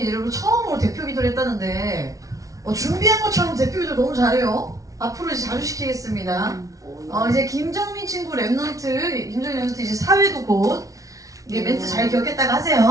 여러분 처음으로 대표 기도를 했다는데 준비한 것처럼 대표 기도 너무 잘해요. 앞으로 이제 자주 시키겠습니다. 이제 김정민 친구 랩넌트, 김정민 랩넌트 이제 사회도 곧 이게 멘트 잘 기억했다가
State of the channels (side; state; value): left; late; 0.17 ms